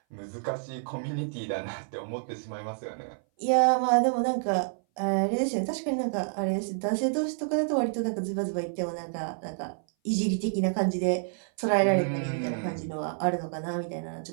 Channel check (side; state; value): left; silent; 57 dB below the other